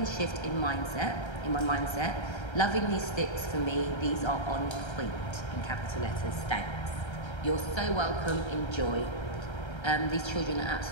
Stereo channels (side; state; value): right; late; 1.3 ms